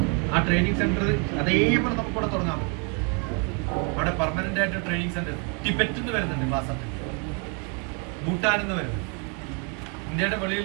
ആ ട്രെയിനിങ് സെന്റർ അതേപോലെ നമുക്കിവിടെ തുടങ്ങാൻ പറ്റും. അവിടെ പെർമനന്റ് ആയിട്ട് ട്രെയിനിങ് സെന്റർ ടിബറ്റിൽ നിന്ന് വരുന്നുണ്ട് ക്ലാസ് അറ്റൻഡ്, ഭൂട്ടാനിൽ നിന്ന് വരുന്നുണ്ട്, ഇന്ത്യയുടെ വെളിയിൽ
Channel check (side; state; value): left; quieter; 36.2 dB